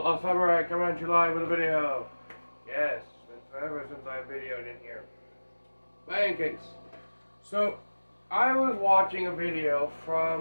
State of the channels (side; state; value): both; inverted; correlation -1.00